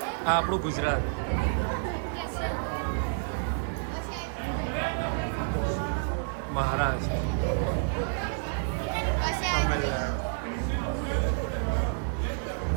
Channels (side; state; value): left; silent; 58 dB below the other